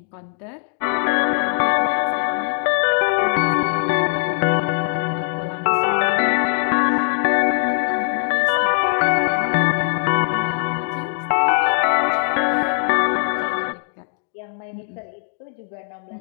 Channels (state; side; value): silent; right; digital silence